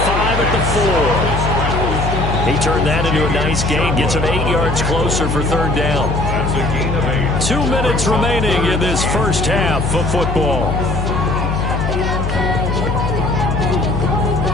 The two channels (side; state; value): left; noise; hum, 2 dB below the sound